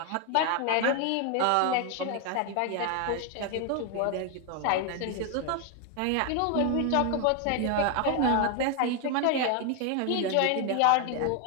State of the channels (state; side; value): different; both; correlation 0.01